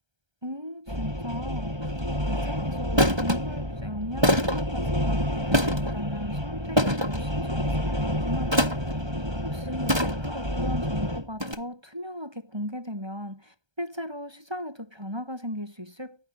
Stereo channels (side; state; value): left; late; 1.3 ms